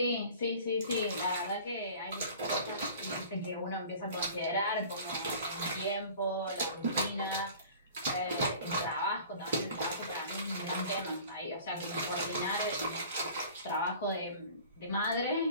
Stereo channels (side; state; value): both; inverted; correlation -0.44